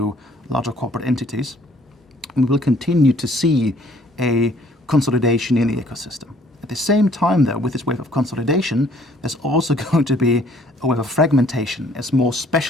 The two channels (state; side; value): normal; both; correlation 0.59